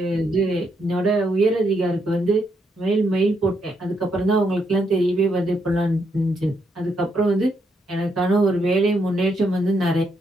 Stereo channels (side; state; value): both; normal; correlation 0.77